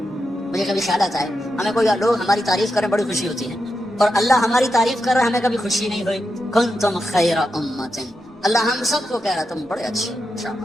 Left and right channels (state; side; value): normal; both; correlation 0.87